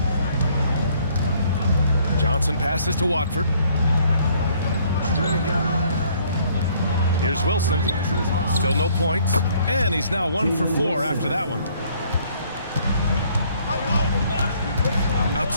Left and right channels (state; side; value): inverted; both; correlation -0.62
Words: Johnson passes to Watford. Here's Wilson. Still no points. And he's now 1 for 4 after that one.